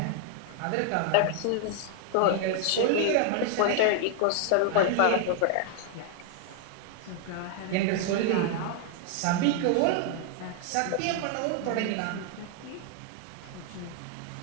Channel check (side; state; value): both; different; correlation 0.00